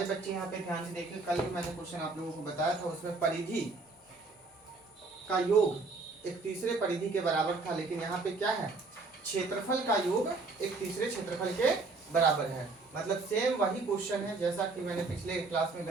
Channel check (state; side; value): quieter; left; 3.8 dB